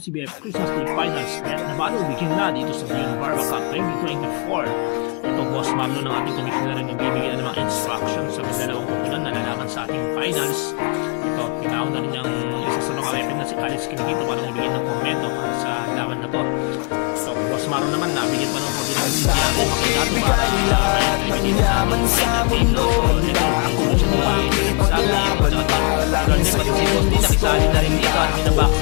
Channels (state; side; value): quieter; right; 32.9 dB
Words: Christmas League Finals. Let the battle begin na dito sa Dion Barba Cup 2024. Ito, Boss Marlon ng ating commissioner ang nagbibigay ng mga instructions sa dalawang kupunan na lalaban sa ating finals. Ito, tinawag na rin yung isa sa mga weapon na si Alice Kinikito para nagbigay ng komento sa laban na to. So, Boss Marlon naman, nabigyan pa ng oportunidad si DRN Makinato para may dito sa ating final game. No? So, ito, ikulo siya ni Nagsabi, si Ronde pati si Bondi nakisali na rin dito at